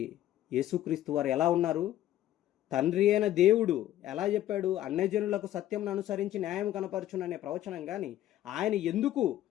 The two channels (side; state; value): right; quieter; 13.0 dB